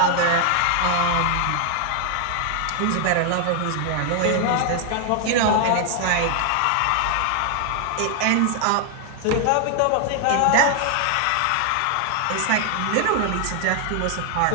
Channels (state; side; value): different; both; correlation 0.00